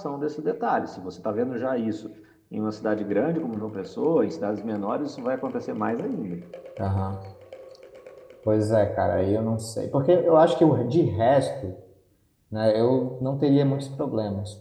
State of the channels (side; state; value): both; identical; correlation 1.00